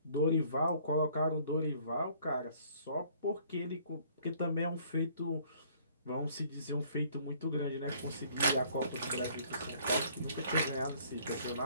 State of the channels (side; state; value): both; inverted; correlation -0.59